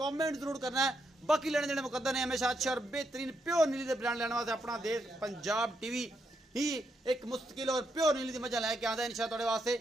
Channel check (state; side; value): normal; both; correlation 0.80